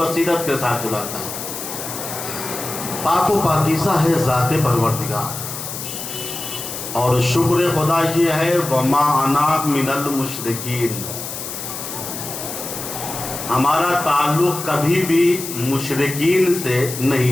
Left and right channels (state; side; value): noise; left; hiss, 8 dB below the sound